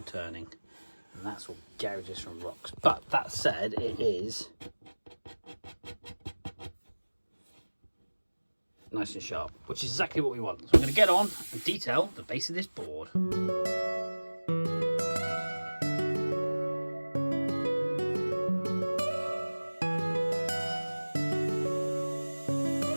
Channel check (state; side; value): inverted; both; correlation -1.00